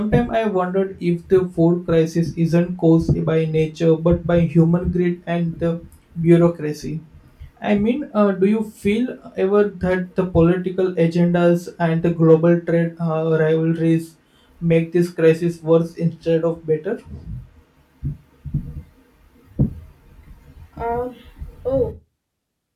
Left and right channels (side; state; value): both; identical; correlation 1.00